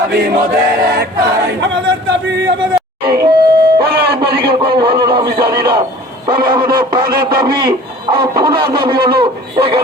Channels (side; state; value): both; normal; correlation 0.46